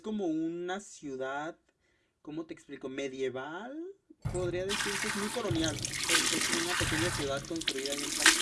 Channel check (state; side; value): identical; both; correlation 1.00